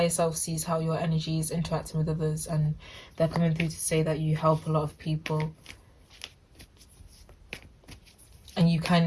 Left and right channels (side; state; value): both; identical; correlation 1.00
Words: self sees how your energy is interacting with others, and they're coming through to say that you help a lot of people. And you